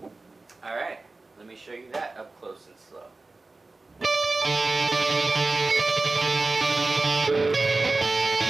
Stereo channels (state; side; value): quieter; left; 3.4 dB